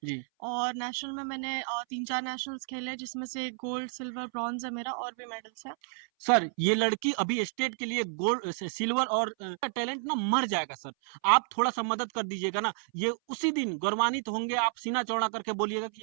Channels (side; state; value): left; silent; 57 dB below the other